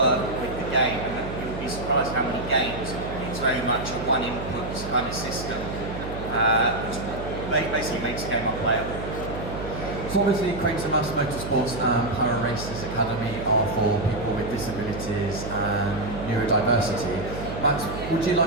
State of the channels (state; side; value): noise; right; hum, 8 dB below the sound